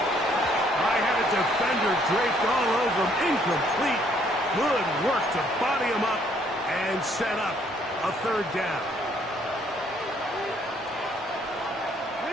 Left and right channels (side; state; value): both; normal; correlation 0.66